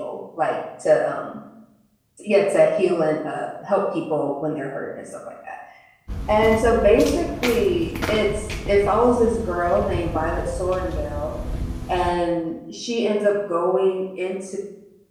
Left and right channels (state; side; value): identical; both; correlation 1.00